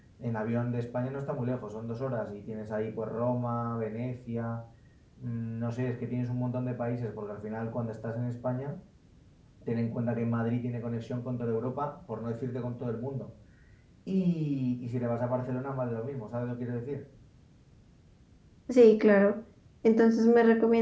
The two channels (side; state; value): both; identical; correlation 1.00